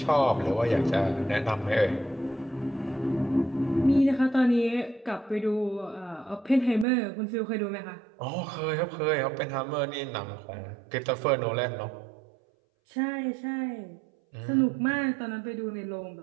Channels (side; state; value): left; drops out; at 6.9 s